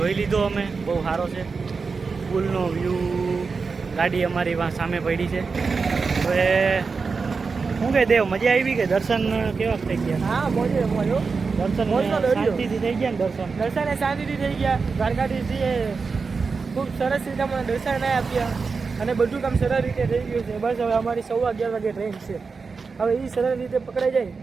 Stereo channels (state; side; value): quieter; left; 4.8 dB